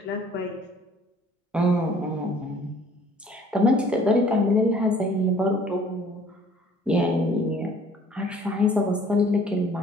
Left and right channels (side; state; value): both; normal; correlation 0.55